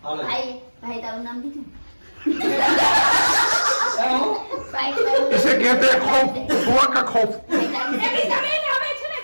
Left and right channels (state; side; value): inverted; both; correlation -1.00